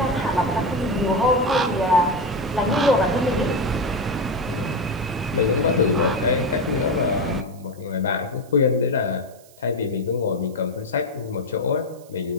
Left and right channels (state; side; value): noise; right; hiss, 26 dB below the sound